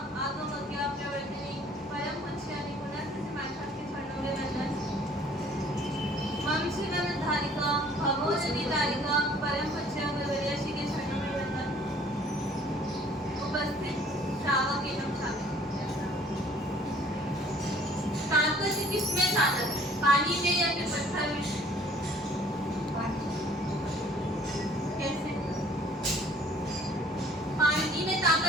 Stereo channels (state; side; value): normal; both; correlation 0.56